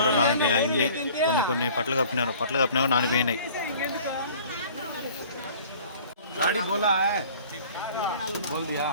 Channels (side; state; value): both; inverted; correlation -0.49